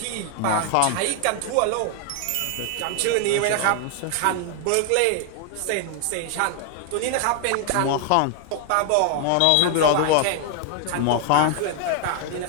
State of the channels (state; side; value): different; both; correlation 0.00